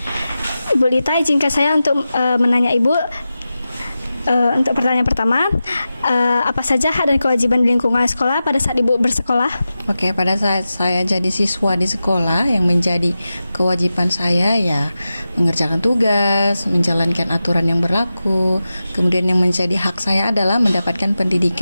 Ibu Lita, izinkan saya untuk menanya Ibu untuk pertanyaan pertama, apa saja hak dan kewajiban di lingkungan sekolah pada saat Ibu bersekolah? Oke, pada saat saya jadi siswa di sekolah, yang menjadi kewajiban saya ya mengerjakan tugas, menjalankan aturan yang berlaku. Kemudian yang menjadi hak saya adalah mendapatkan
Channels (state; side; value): inverted; both; correlation -0.93